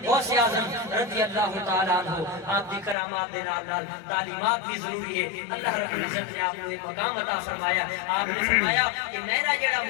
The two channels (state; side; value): drops out; right; at 3.0 s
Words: غوث اعظم رضی اللہ تعالی عنہ آپ دی کرامات دے نال تعلیمات بھی ضروری ہے اللہ رب العزت نے آپ کو ایک مقام عطا فرمایا آپ نے فرمایا کہ میرا جڑا